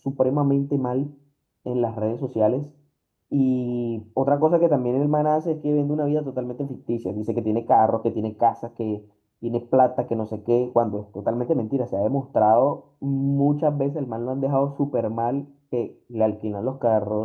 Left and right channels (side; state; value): both; identical; correlation 1.00